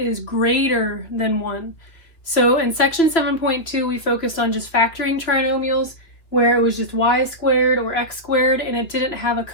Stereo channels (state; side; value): late; right; 2.8 ms